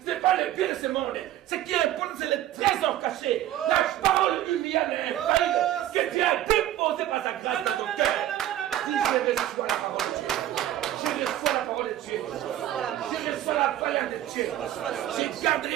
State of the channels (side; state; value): left; quieter; 12.8 dB